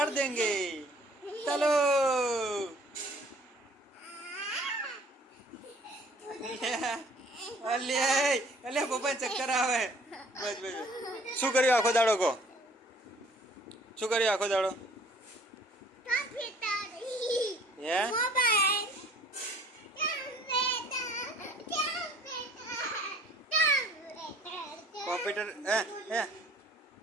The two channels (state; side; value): normal; both; correlation 0.55